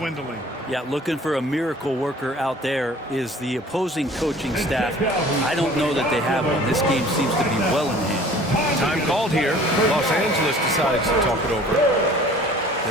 Yeah, looking for a miracle worker out there is the opposing coaching staff. I don't know that they have one. This game seems to be well in hand. Time called here. Los Angeles decides to talk it over.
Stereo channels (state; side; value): normal; both; correlation 0.49